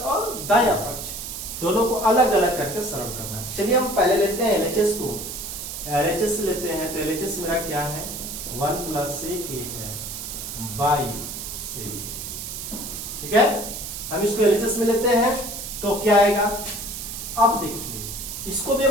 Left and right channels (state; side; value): noise; right; hiss, 7 dB below the sound